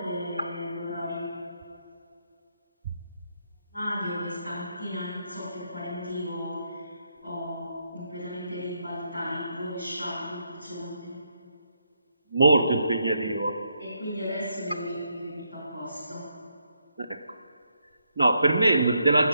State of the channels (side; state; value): both; inverted; correlation -0.79